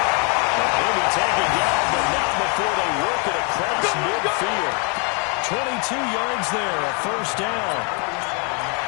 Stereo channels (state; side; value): quieter; right; 36.3 dB